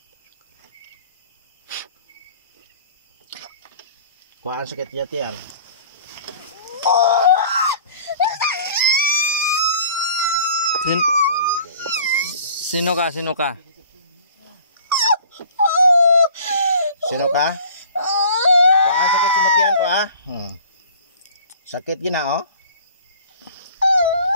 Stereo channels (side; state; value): both; inverted; correlation -0.49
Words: Kuha ang sakit yatian. Sino ka? Sino ka? Sino ka? Kuha ang sakit yatian, kuha. Sakit gina, oh.